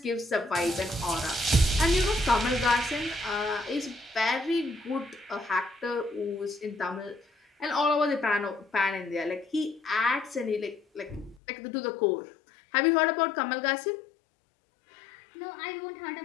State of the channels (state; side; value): drops out; right; at 11.4 s